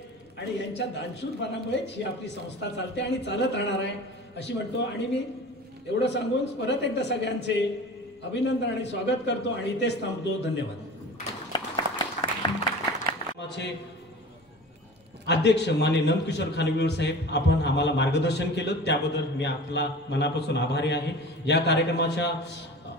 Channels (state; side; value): normal; both; correlation 0.37